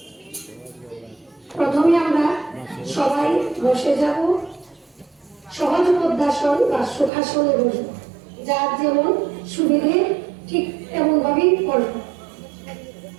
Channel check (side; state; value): left; drops out; at 7.1 s